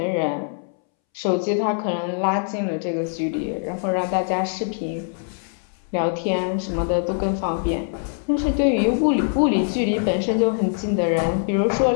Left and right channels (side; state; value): right; silent; 64 dB below the other